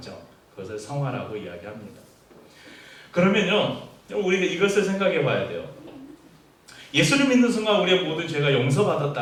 그것을 성화라고 이야기합니다. 그러면요 우리가 이것을 생각해 봐야 돼요. 예수를 믿는 순간 우리의 모든 죄가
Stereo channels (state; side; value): identical; both; correlation 1.00